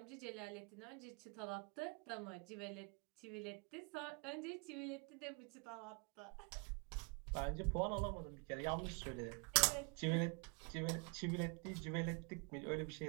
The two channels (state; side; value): quieter; left; 32.4 dB